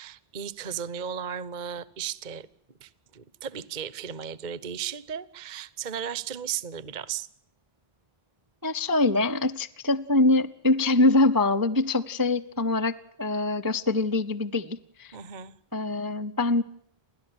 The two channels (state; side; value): late; left; 2.1 ms